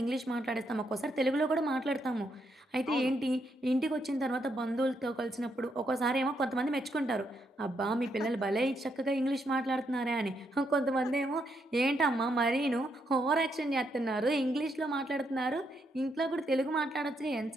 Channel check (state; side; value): normal; both; correlation 0.78